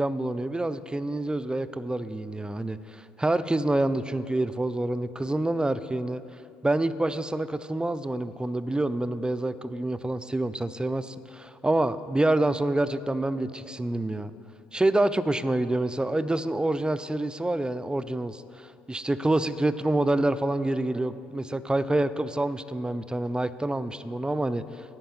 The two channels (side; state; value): both; normal; correlation 0.94